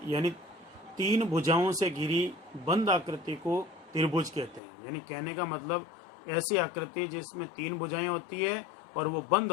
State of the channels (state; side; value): drops out; right; at 4.6 s